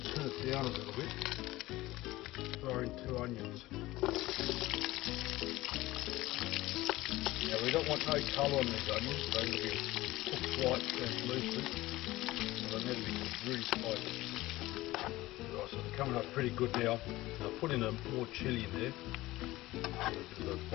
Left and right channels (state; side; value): quieter; right; 18.1 dB